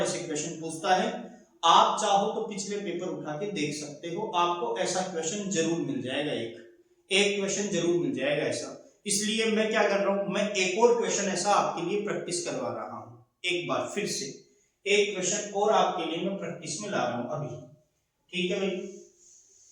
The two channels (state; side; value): identical; both; correlation 1.00